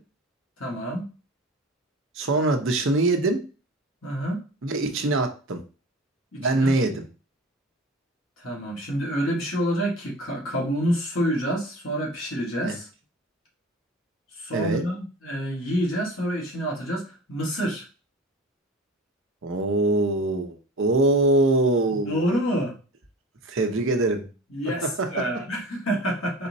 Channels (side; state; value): both; normal; correlation 0.37